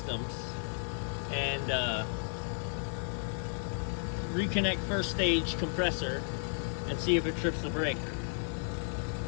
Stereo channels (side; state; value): right; silent; digital silence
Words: and reconnect first stage compressor and see if it trips the breaker.